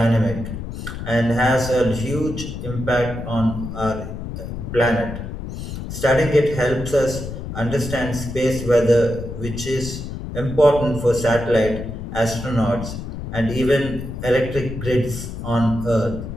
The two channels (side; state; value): left; noise; rumble, 7 dB below the sound